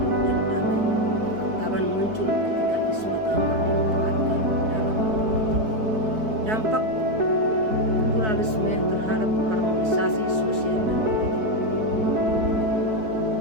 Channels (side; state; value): left; late; 4.6 ms